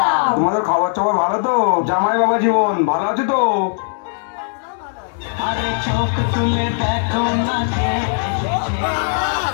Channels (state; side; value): silent; right; 62 dB below the other